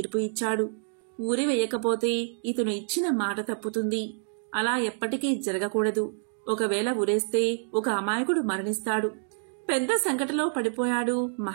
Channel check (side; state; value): left; silent; digital silence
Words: ఇచ్చాడు. ఉరి వేయకపోతే ఇతను ఇచ్చిన మాట తప్పుతుంది. అలా ఎప్పటికీ జరగకూడదు. ఒకవేళ ఉరేస్తే ఒక అమాయకుడు మరణిస్తాడు. పెద్ద సంకటలో పడిపోయాడు